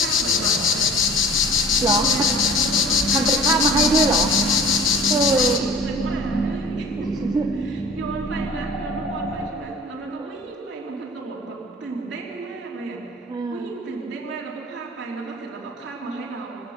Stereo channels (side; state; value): both; normal; correlation 0.43